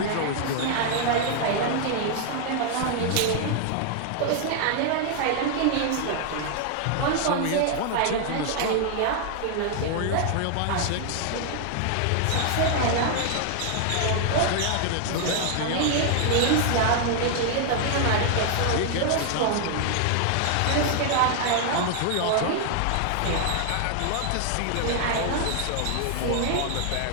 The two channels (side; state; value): both; different; correlation 0.00